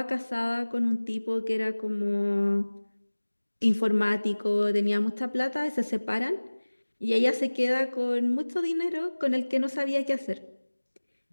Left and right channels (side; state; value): both; inverted; correlation -1.00